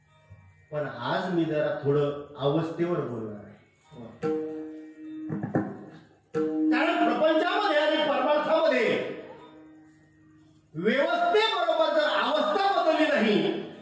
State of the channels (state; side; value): identical; both; correlation 1.00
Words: पण आज मी जरा थोडं अवस्थेवर बोलणार आहे. कारण प्रपंचामध्ये आणि परमार्थामध्ये व्यवस्थेबरोबर जर अवस्था बदलली नाही